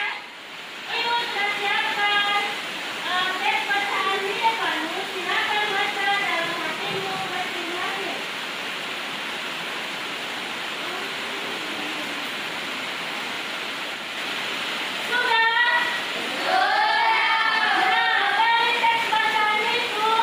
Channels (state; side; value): identical; both; correlation 1.00